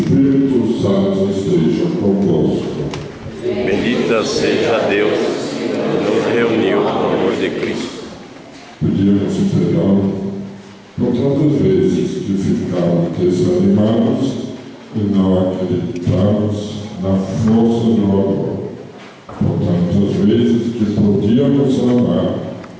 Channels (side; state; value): both; identical; correlation 1.00